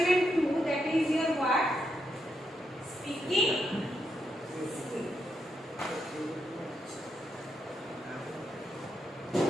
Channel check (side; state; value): both; normal; correlation 0.82